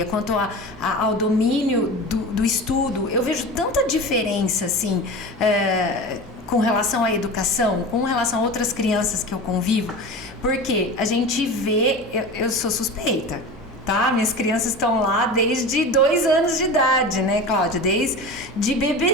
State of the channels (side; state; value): both; normal; correlation 0.30